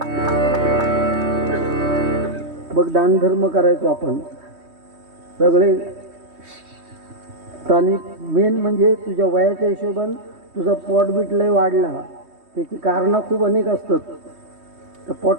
बघ दानधर्म करायचो आपण सगळे स्थानिक. मेन म्हणजे तुझ्या वयाच्या हिशोबान तुझा पोट बीट लय वाढला, त्याची कारणं खूप अनेक असतात. तर पोट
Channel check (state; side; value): late; left; 3.2 ms